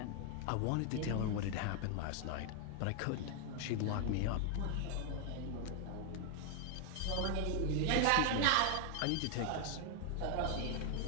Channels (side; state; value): both; different; correlation 0.00